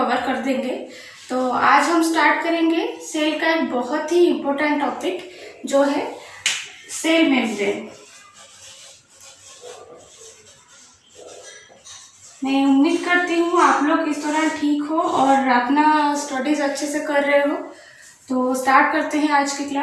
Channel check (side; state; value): both; identical; correlation 1.00